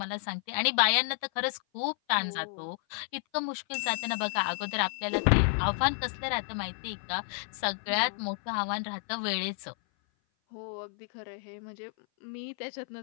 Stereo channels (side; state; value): right; silent; 56 dB below the other